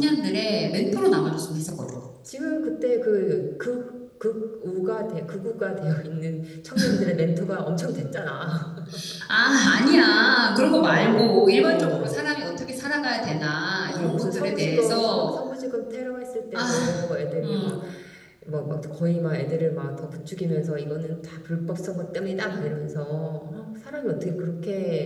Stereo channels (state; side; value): identical; both; correlation 1.00